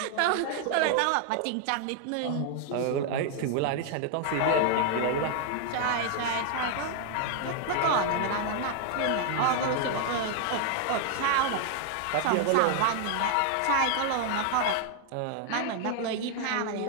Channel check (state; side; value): different; both; correlation 0.00